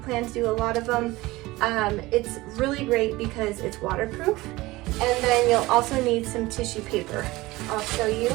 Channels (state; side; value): quieter; left; 19.9 dB